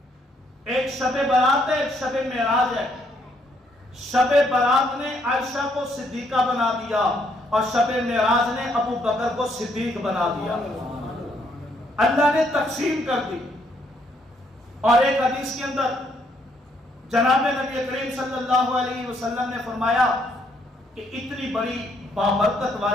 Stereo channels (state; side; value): normal; both; correlation 0.71